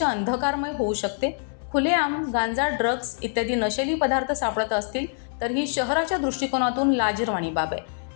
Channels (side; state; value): right; silent; digital silence